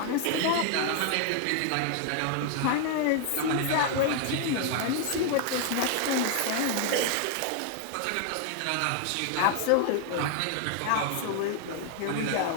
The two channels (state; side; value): different; both; correlation 0.00